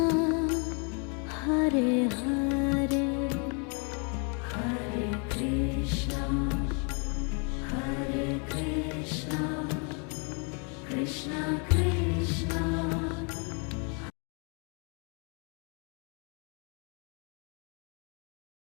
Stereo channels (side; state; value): right; quieter; 37.0 dB